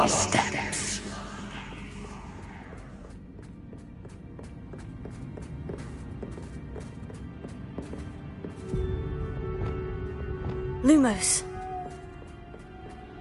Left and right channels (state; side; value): identical; both; correlation 1.00